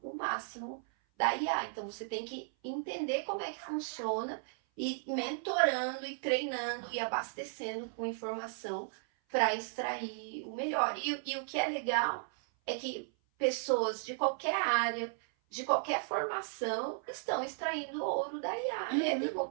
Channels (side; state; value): left; silent; 54 dB below the other